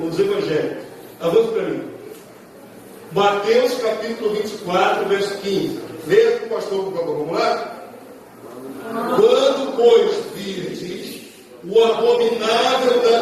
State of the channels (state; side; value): identical; both; correlation 1.00